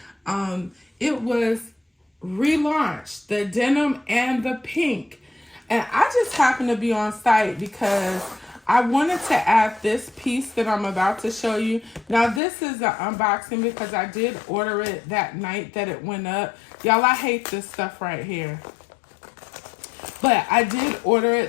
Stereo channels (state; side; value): drops out; right; at 12.4 s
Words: it was relaunched, the denim and the pink. And I just happened to be on site because I wanted to add this piece that I'm about to show you. Now, this is an unboxing because I did order it that night that it went up. Y'all, I hate this stuff right here. But I did order